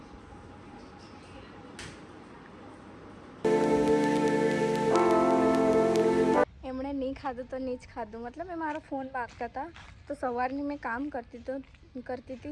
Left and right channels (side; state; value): both; identical; correlation 1.00